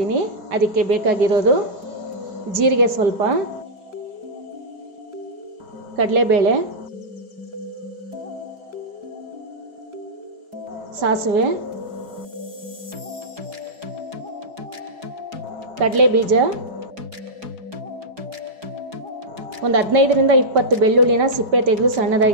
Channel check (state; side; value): late; left; 4.8 ms